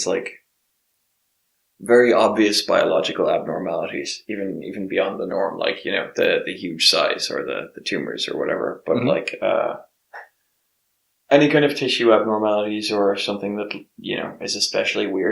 like very obvious biological abnormalities, even beyond the norm, like the huge size or the tumors or whatever. But Mhm. like any kind of tissue abnormalities or something that is especially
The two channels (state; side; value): identical; both; correlation 1.00